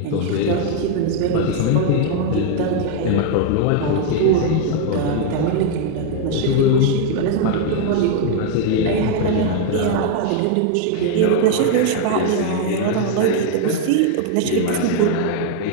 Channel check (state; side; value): different; both; correlation 0.00